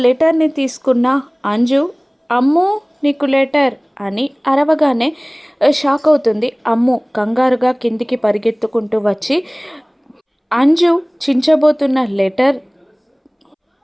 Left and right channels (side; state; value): both; identical; correlation 1.00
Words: లెటర్ని తీసుకున్న అంజు అమ్ము నీకు లెటర్ అని అరవగానే షాక్ అవుతుంది. అమ్ము కంగారుగా కిందికి పరిగెత్తుకుంటూ వచ్చి అంజు చించబోతున్న లెటర్